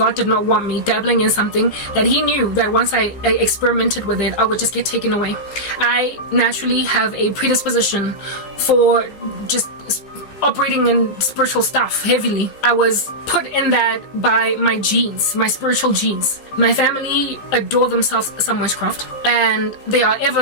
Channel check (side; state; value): right; late; 15 ms